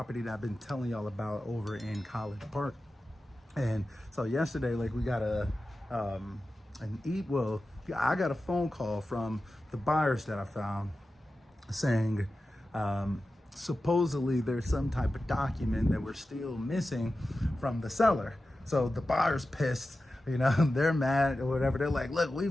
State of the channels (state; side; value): normal; both; correlation 0.93